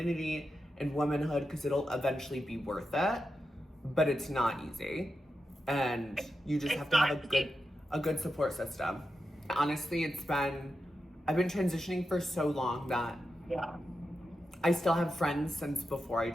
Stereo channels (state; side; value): normal; both; correlation 0.89